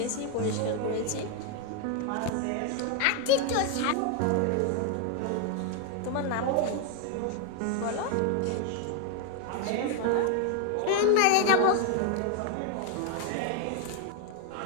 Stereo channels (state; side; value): different; both; correlation 0.01